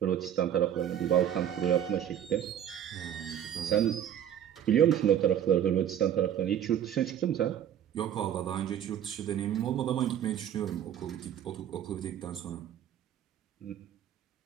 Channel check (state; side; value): quieter; left; 10.1 dB